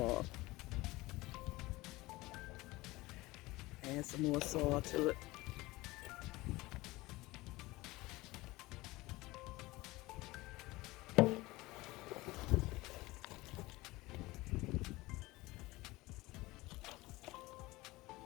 Add some more soil to it.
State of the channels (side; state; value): right; quieter; 20.4 dB